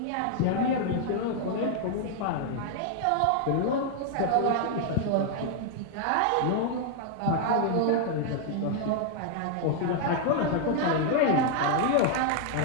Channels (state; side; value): different; both; correlation 0.00